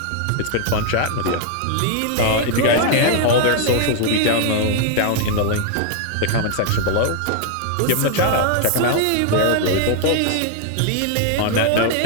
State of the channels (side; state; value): both; different; correlation 0.00